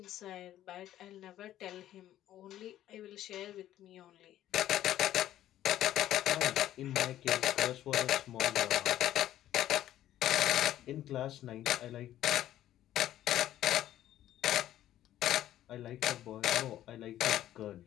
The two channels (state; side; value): quieter; right; 12.8 dB